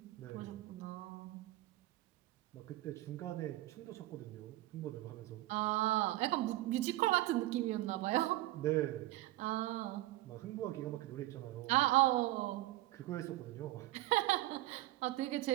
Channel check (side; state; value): left; quieter; 17.0 dB